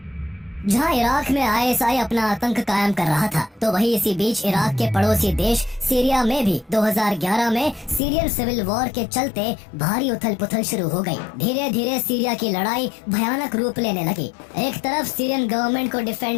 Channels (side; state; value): right; drops out; at 8.0 s